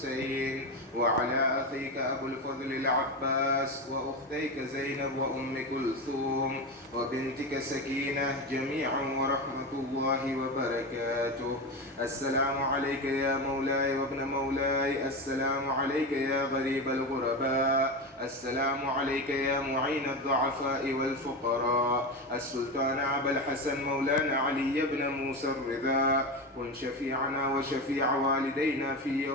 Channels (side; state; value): both; normal; correlation 0.19